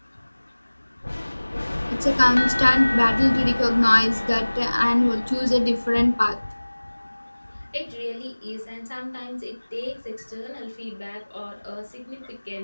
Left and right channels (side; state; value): both; inverted; correlation -1.00